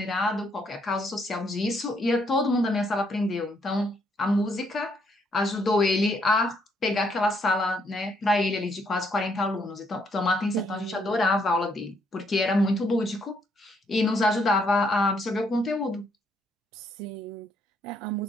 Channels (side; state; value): both; normal; correlation 0.72